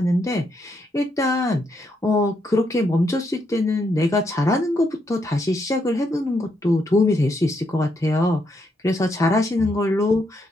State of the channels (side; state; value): both; normal; correlation 0.77